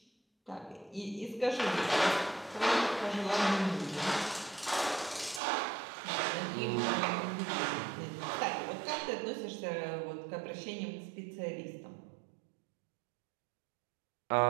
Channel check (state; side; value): drops out; left; at 5.4 s